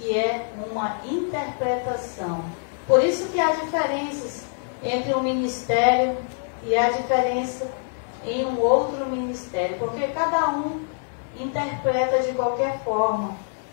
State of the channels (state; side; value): silent; right; 62 dB below the other